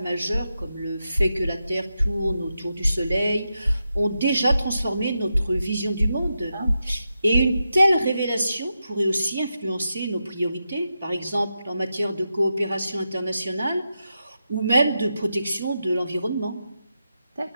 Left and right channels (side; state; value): both; inverted; correlation -0.88